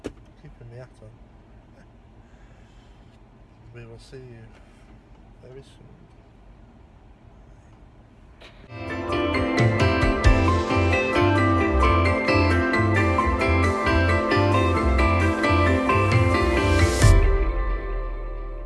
Keeping my hat on. We will see you very soon.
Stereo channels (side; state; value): both; identical; correlation 1.00